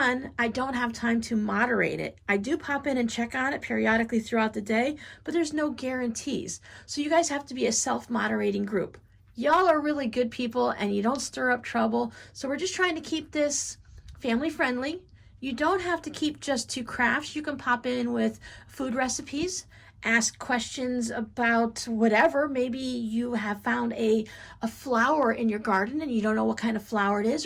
I don't have time to moderate it. I do pop in and check on it periodically throughout the day, but there's no guarantees. So you guys have to be a self-moderating group. Y'all are really good people and you don't stir up trouble, so we're just trying to keep this family-friendly. You don't have to keep just to crafts. You can pop in with food recipes, ask questions about whatever. Maybe you have found a flower in your garden and you don't know what kind of flower it is,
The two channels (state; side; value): identical; both; correlation 1.00